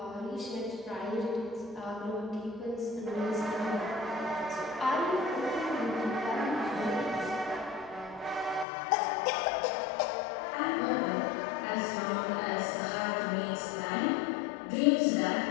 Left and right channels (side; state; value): right; drops out; at 8.7 s